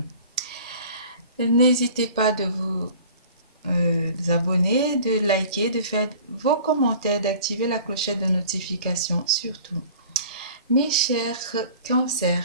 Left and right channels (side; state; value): both; inverted; correlation -0.45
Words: N'hésitez pas de vous abonner, de liker, de faire vos commentaires, d'activer la clochette de notification surtout. Mes chers